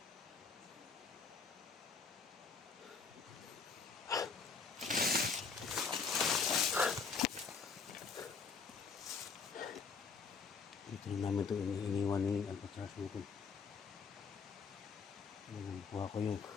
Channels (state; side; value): quieter; right; 5.4 dB